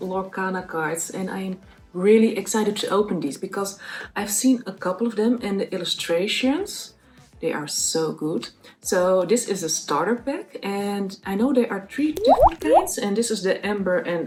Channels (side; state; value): both; identical; correlation 1.00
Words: cards, and I am really excited to open these because I've seen a couple of them and the illustrations, they are so good. So this is a starter pack, and I know there are 3 different kinds, and this is the Amber